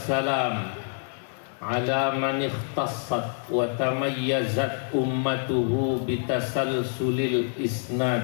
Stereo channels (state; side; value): silent; right; digital silence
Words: ala man ikhtassat wa tamayyazat ummatuhu bitasalsulil isnad